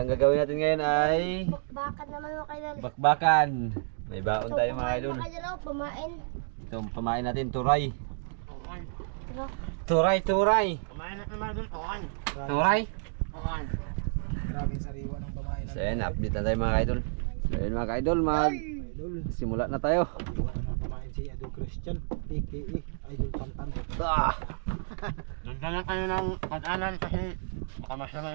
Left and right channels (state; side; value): silent; left; digital silence